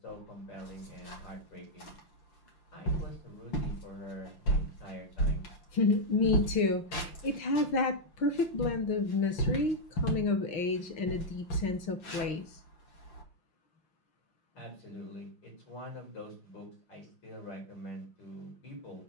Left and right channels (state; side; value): late; right; 5.7 ms